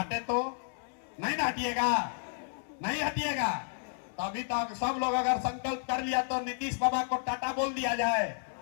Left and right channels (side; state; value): right; silent; digital silence